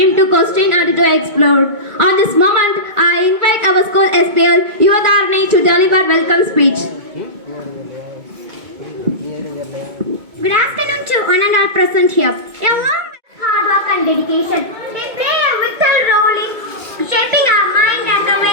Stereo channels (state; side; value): late; left; 2.2 ms